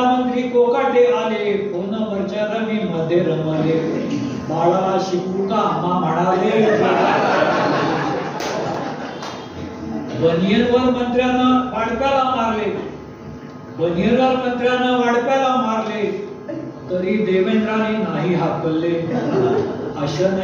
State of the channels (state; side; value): identical; both; correlation 1.00